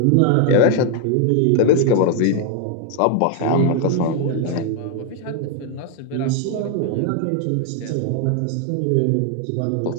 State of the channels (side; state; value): both; different; correlation 0.00